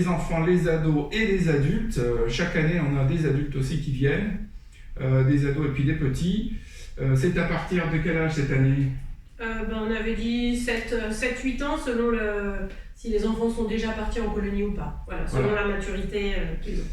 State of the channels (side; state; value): both; identical; correlation 1.00